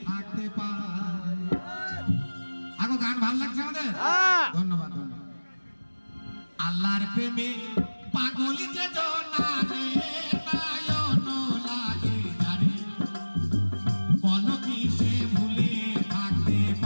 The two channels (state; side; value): inverted; both; correlation -1.00